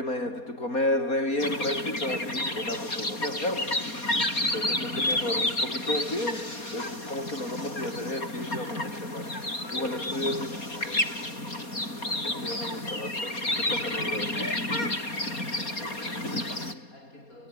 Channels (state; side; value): late; right; 4.2 ms